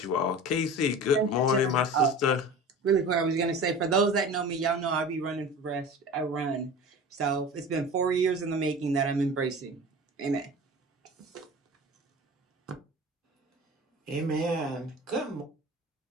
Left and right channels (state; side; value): normal; both; correlation 0.36